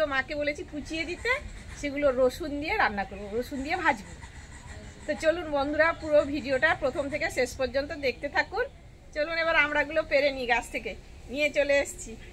মাকে বলেছি কুচিয়ে দিতে, সেগুলো রসুন দিয়ে রান্না করবো, রসুন দিয়ে ভাজবো। তো চলুন বন্ধুরা, পুরো ভিডিওটা প্রথম থেকে শেষ পর্যন্ত দেখতে থাকুন। চলুন এবার আমড়াগুলো পেরে নিই, গাছ থেকে নিয়ে চলে এসেছি,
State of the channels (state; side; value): identical; both; correlation 1.00